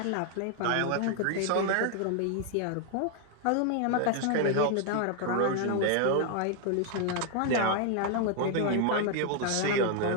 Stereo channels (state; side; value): different; both; correlation 0.00